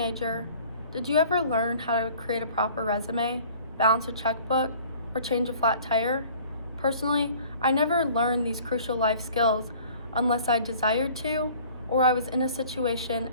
did you ever learn how to create a proper resume, balance a checkbook, or change a flat tire? Personally, I never learned these crucial life skills unless I desired to, or I was in a situation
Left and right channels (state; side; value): inverted; both; correlation -0.50